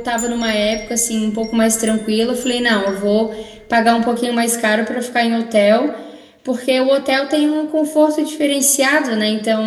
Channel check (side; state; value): both; identical; correlation 1.00